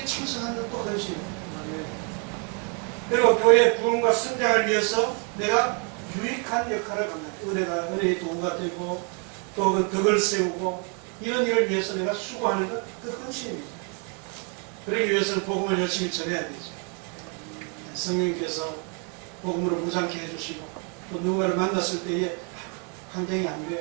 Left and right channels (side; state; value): left; quieter; 37.6 dB